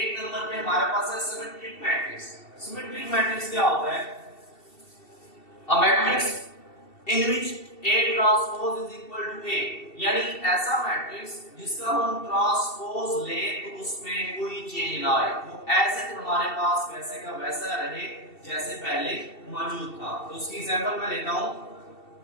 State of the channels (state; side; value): late; right; 2.7 ms